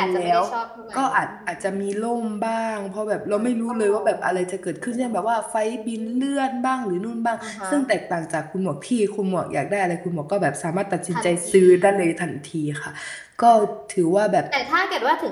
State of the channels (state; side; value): identical; both; correlation 1.00